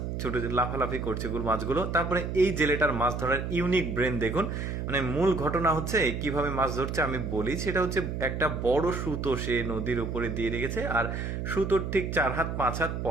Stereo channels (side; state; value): right; noise; hum, 4 dB below the sound